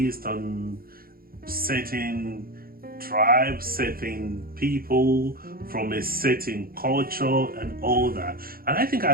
on certain tribes, certain people from a certain culture and all that. And I think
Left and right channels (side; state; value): left; late; 0.43 ms